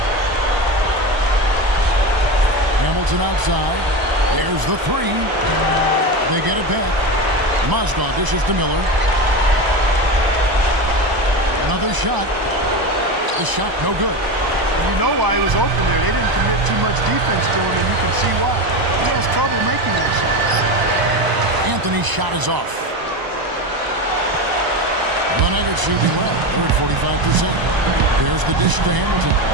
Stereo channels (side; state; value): left; late; 1.0 ms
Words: Hamilton outside. There's the three. They get it back. Mozgov dishes to Miller. Another shot. The shot no good. And you know why he was open there. They didn't commit too much defense to him, and you can see why. He has trouble making that shot. Anthony's shot is off. The Nuggets shooting well. They're at 45%. There's the dish to Hamilton.